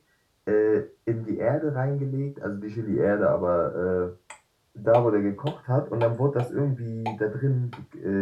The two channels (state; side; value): identical; both; correlation 1.00